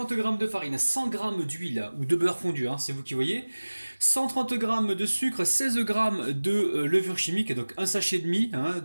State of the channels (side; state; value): both; inverted; correlation -1.00